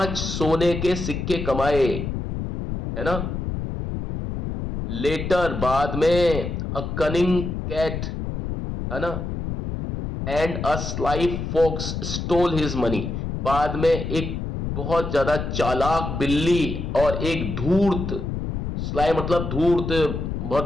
सोने के सिक्के कमाए, है ना। लेटर बाद में, अ कनिंग कैट, है ना, and a sly fox stole his money. बाद में एक बहुत ज्यादा चालाक बिल्ली और एक धूर्त, स्लाई मतलब धूर्त,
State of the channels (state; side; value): noise; left; rumble, 4 dB below the sound